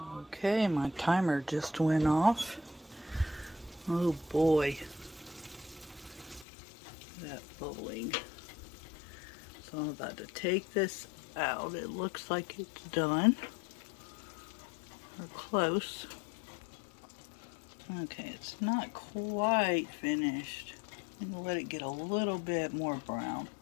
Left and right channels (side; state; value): right; drops out; at 6.5 s